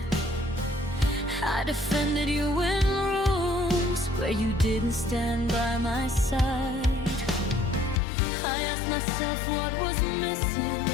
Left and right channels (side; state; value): right; drops out; at 8.0 s